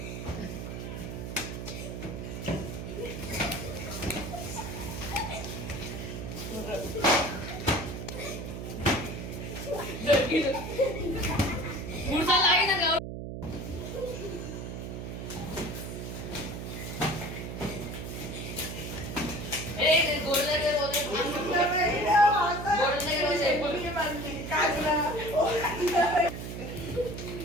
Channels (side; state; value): right; noise; hum, 7 dB below the sound